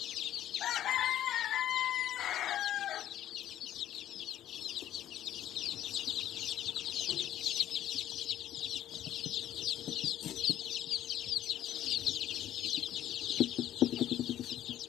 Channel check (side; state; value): right; quieter; 12.0 dB